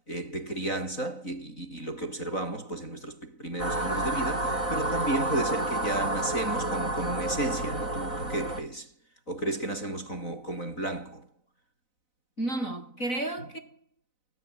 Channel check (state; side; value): late; right; 4.0 ms